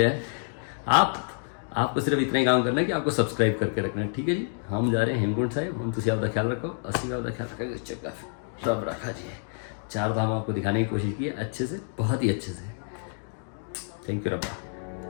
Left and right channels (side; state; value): right; silent; 59 dB below the other